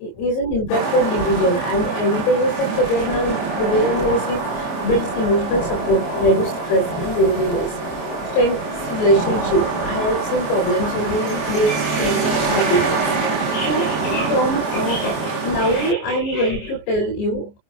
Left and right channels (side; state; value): right; late; 26 ms